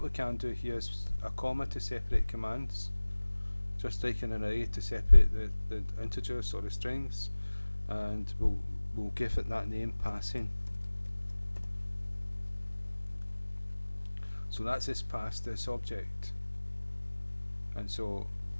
we can do here is a comma to separate commands, just like an array to separate the integers or the strings, and we'll give it that name, passing. So that's this pass, this object, and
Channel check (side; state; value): both; inverted; correlation -1.00